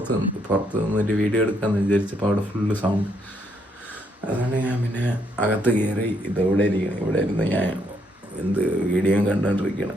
നിന്നൊരു വീഡിയോ എടുക്കാമെന്ന് വിചാരിച്ചപ്പോൾ അവിടെ ഫുള്ള് സൗണ്ട്. അതുകൊണ്ട് ഞാൻ പിന്നെ അകത്ത് കയറി ഇവിടെ ഇരുന്ന് ഞാൻ വീഡിയോ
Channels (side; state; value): both; normal; correlation 0.73